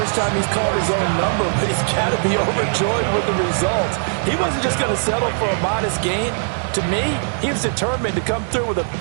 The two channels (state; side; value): silent; left; 66 dB below the other